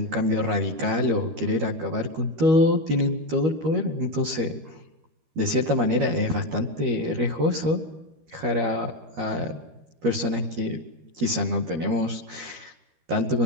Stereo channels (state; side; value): late; left; 13 ms